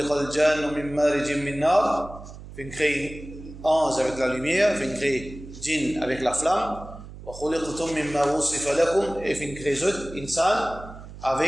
الْجَانُّ مِن مَّارِجٍ مِّن نَّارٍ. Fait créer ange avec la lumière, fait créer djinn avec la flamme. وَخُلِقْتُم مِّمَّا وُصِفَ لَكُمْ. Et fait créer autres insan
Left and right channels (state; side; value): noise; right; hum, 15 dB below the sound